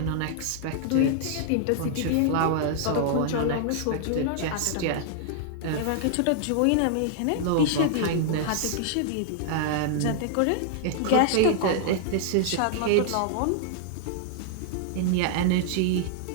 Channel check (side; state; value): both; different; correlation -0.01